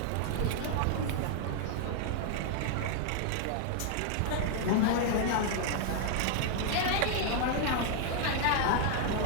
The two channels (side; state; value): both; different; correlation 0.00